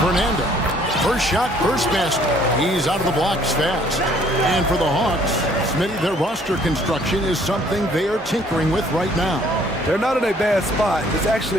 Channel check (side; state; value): both; normal; correlation 0.60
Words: Fernando. First shot, first basket. He's out of the blocks fast. And for the Hawks, Smitty, their roster construction is something they are tinkering with right now. They're not in a bad spot. It's